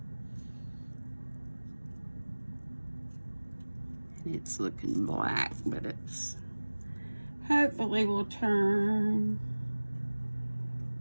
It's looking black, but it's hopefully will turn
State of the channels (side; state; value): both; inverted; correlation -1.00